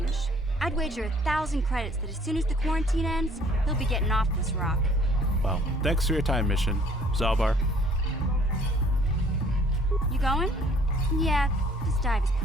I'd wager 1,000 credits that as soon as the quarantine ends, he'll be getting off this rock. Well, thanks for your time, Mission. Zalbar. You going? Yeah, this dive is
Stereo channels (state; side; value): normal; both; correlation 0.57